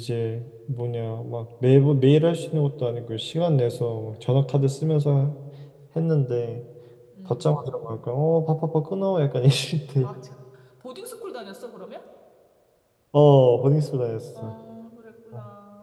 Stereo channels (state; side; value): identical; both; correlation 1.00